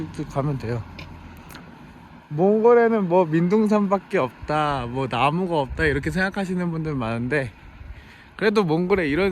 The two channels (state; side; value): identical; both; correlation 1.00